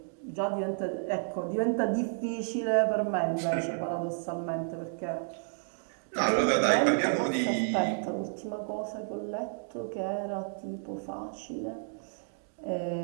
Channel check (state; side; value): silent; left; digital silence